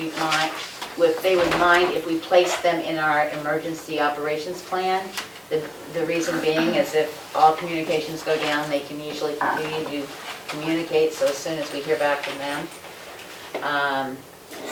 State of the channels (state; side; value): identical; both; correlation 1.00